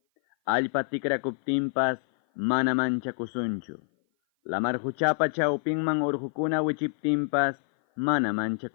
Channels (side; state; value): right; silent; 56 dB below the other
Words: Allpa tikrakuptinpas mana manchakusunchu. Lamar huchapa chawpinman urqukuna wichiptinpas mana